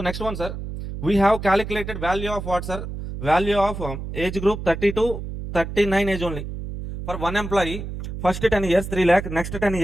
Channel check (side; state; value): right; noise; hum, 8 dB below the sound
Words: next one, sir, we have calculated value of what, sir? Value of age group 30 to 39 age only. For one employee, first 10 years 3 lakh, next 10